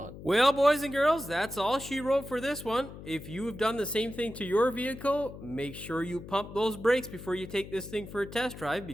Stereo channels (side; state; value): left; noise; hum, 13 dB below the sound